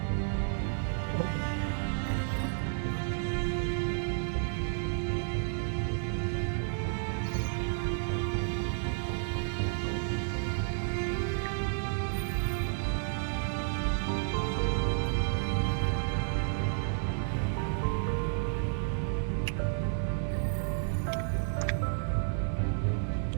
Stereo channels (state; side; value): silent; left; digital silence